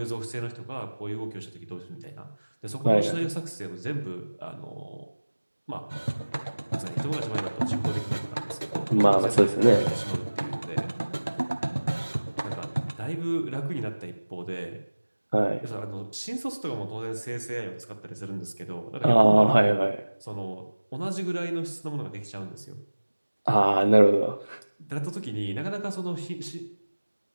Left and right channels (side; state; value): both; inverted; correlation -1.00